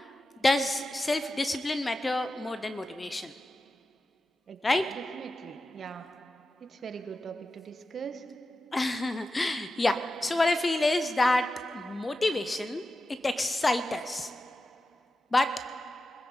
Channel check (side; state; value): both; normal; correlation 0.92